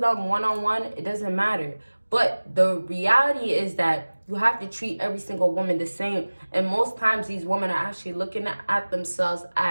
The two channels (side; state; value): both; inverted; correlation -1.00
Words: them one-on-one, it doesn't matter. But the reality is that you have to treat every single woman the same. And most times these women are actually looking at themselves